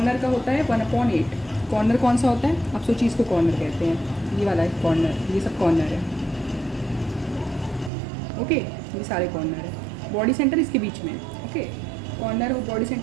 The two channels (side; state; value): left; drops out; at 7.9 s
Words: का होता है 1/8। कॉर्नर कौन सा होता है, आप सोचिए इसको कॉर्नर कहते हैं। ये वाला है कॉर्नर, ये सब कॉर्नर है। ओके, ये सारे कॉर्नर है। बॉडी सेंटर इसके बीच में। ओके, कॉर्नर और बॉडी